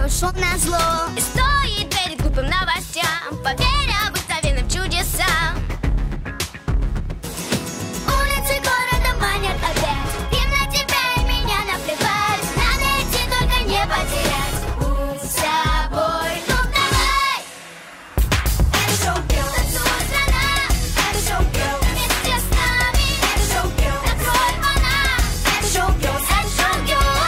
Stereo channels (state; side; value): identical; both; correlation 1.00